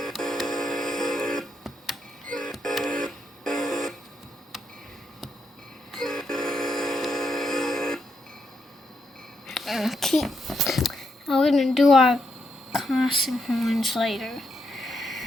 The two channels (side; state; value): both; normal; correlation 0.81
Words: Okay. Now we're gonna do our crossing horns later.